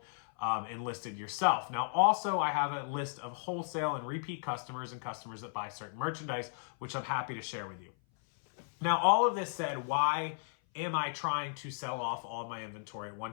and listed yourself. Now, also, I have a list of wholesale and repeat customers and customers that buy certain merchandise, which I'm happy to share with you. Now, all of this said, why am I trying to sell off all of my inventory at one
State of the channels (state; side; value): silent; right; 55 dB below the other